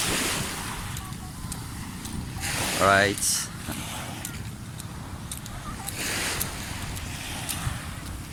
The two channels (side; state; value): both; identical; correlation 1.00